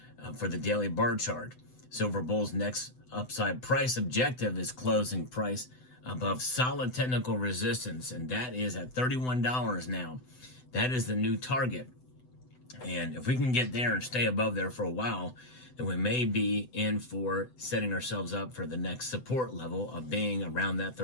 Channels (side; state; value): right; late; 7.9 ms